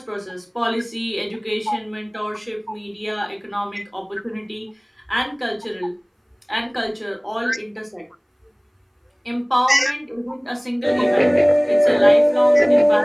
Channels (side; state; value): both; identical; correlation 1.00